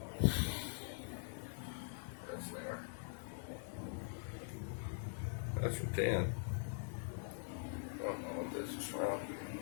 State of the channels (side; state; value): right; silent; digital silence